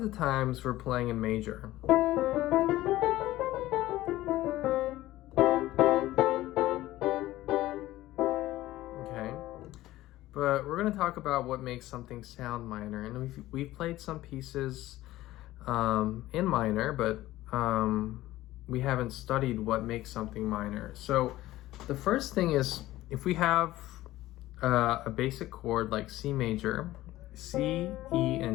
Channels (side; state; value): right; quieter; 16.1 dB